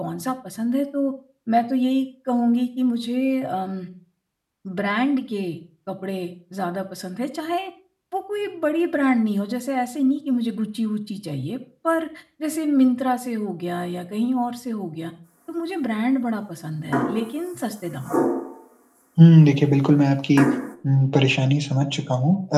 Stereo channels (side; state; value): both; identical; correlation 1.00